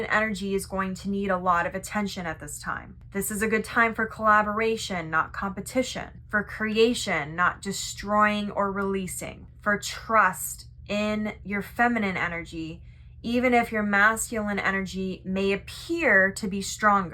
energy is going to need a lot of attention at this time. This is a good time for collaboration, not competition. For creation, not destroying or releasing. For trust in your feminine energy, even if your masculine energy may appear to be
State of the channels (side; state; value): both; identical; correlation 1.00